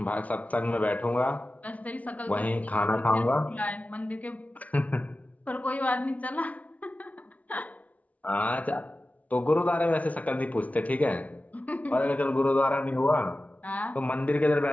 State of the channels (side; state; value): right; late; 0.070 ms